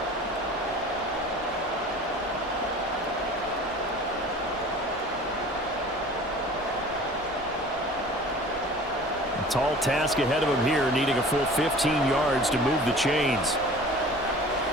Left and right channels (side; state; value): both; normal; correlation 0.44